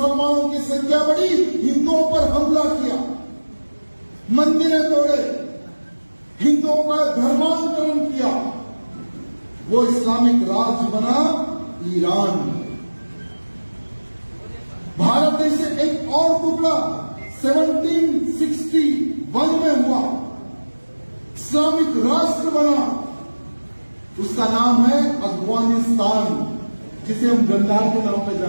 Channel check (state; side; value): inverted; both; correlation -1.00